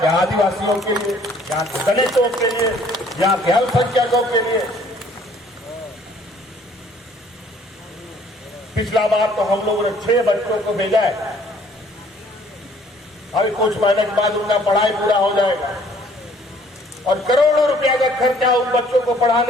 आदिवासियों के लिए, यहाँ के दलितों के लिए, यहाँ के अल्पसंख्यकों के लिए। पिछला बार तो हम लोगों ने 6 बच्चों को भेजा है। अभी कुछ महीने के बाद उनका पढ़ाई पूरा हो जाएगा और करोड़ों रुपया का खर्चा उन बच्चों को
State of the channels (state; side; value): normal; both; correlation 0.59